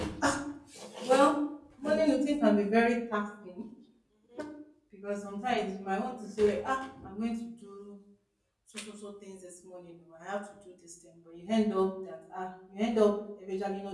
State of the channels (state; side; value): identical; both; correlation 1.00